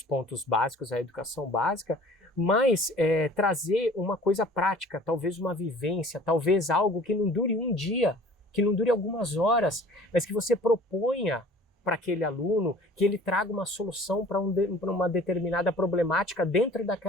pontos básicos, a educação básica, mas trazer uma coisa prática, talvez uma vivência, talvez algo que não dure um dia, que não dure algumas horas, mas que você proponha para aquele aluno, que ele traga uma solução para uma determinada problemática dentro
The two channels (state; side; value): normal; both; correlation 0.48